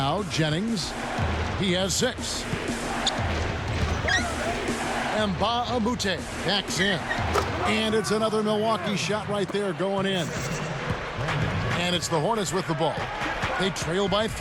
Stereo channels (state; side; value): identical; both; correlation 1.00